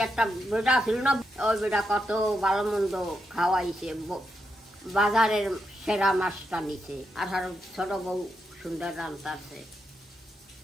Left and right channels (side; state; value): both; normal; correlation 0.83